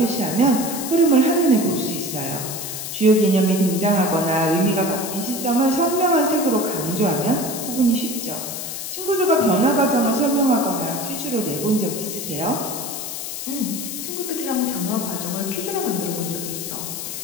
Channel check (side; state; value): left; noise; hiss, 6 dB below the sound